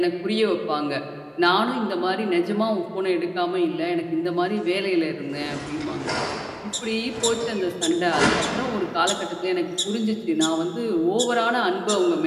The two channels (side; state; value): both; identical; correlation 1.00